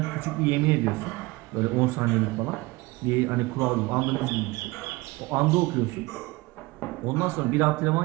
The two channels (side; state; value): left; quieter; 22.3 dB